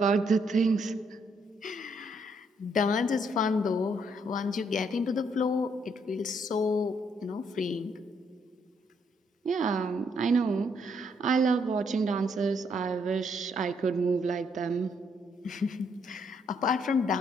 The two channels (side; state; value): both; normal; correlation 0.72